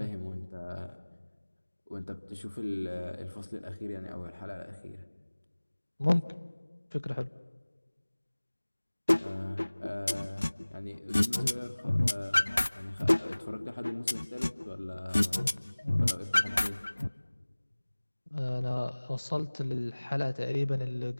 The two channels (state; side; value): inverted; both; correlation -1.00